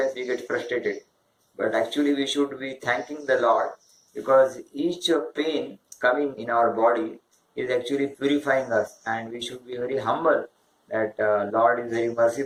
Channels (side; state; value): both; identical; correlation 1.00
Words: we get frustrated. But actually we should be thanking the Lord, because each pain coming in our body is actually purifying us, and we should be very humble that Lord is very